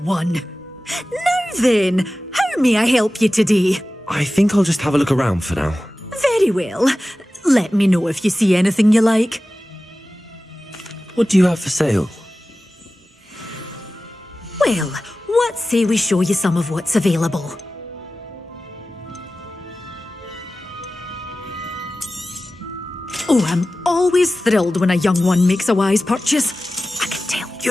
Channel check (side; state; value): both; normal; correlation 0.95